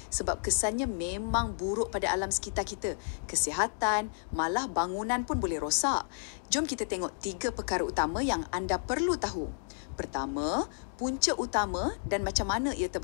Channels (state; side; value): silent; right; digital silence